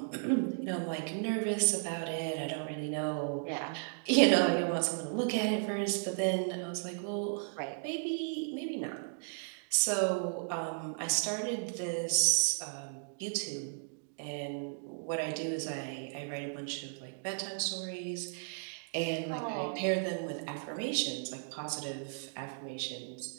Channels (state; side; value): silent; left; digital silence